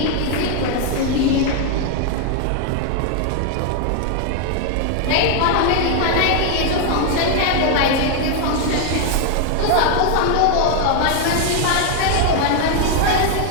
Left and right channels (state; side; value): different; both; correlation 0.00